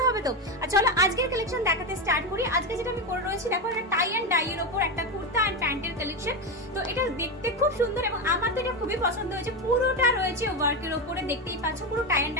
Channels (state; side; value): normal; both; correlation 0.13